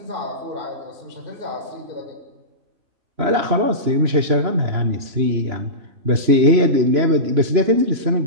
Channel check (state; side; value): late; left; 3.0 ms